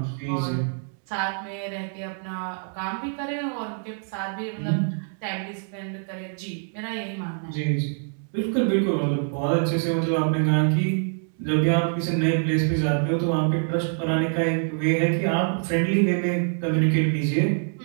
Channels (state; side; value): silent; left; 57 dB below the other